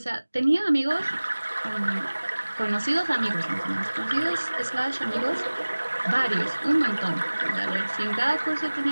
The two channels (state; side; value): inverted; both; correlation -1.00